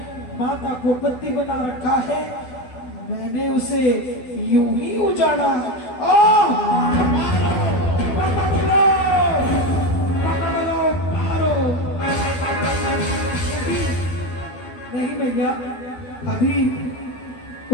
माता को बंदी बना रखा है, मैंने उसे यूं ही उजाड़ा। मारो। नहीं भैया, अभी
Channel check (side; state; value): right; late; 12 ms